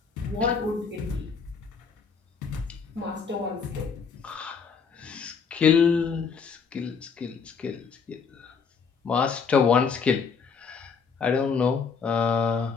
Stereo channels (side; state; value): right; quieter; 5.8 dB